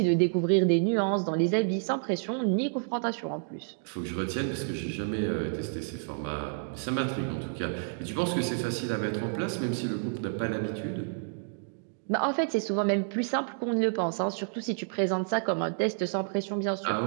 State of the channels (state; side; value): silent; left; digital silence